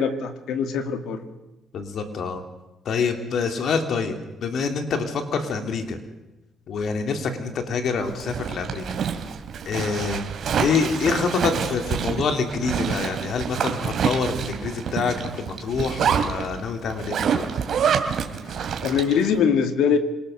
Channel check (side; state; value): both; normal; correlation 0.61